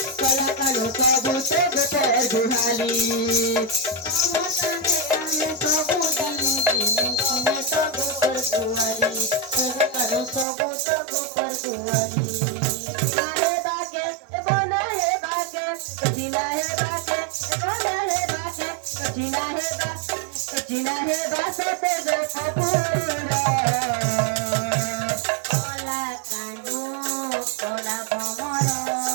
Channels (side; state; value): left; drops out; at 10.5 s